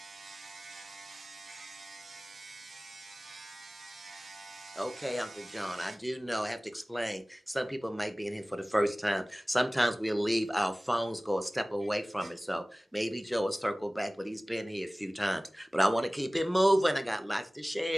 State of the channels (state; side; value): normal; both; correlation 0.98